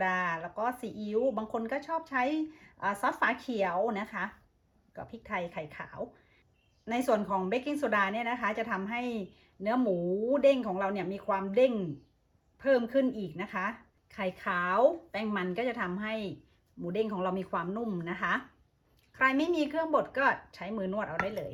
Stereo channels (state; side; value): identical; both; correlation 1.00